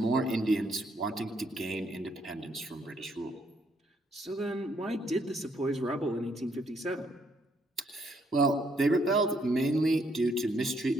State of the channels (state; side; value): normal; both; correlation 0.71